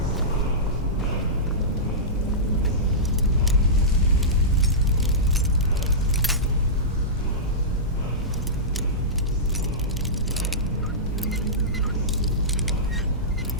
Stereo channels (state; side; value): normal; both; correlation -0.16